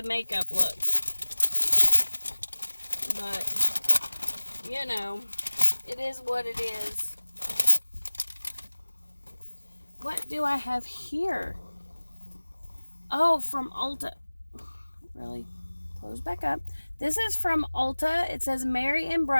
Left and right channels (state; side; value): inverted; both; correlation -1.00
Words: makeup look. But, you know, it is what it is. What do I have here? Oh, from Ulta. Really? Close back up. This is from Ulta. It says Merry and